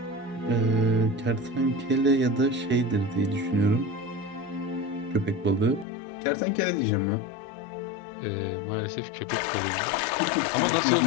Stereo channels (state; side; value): drops out; right; at 5.9 s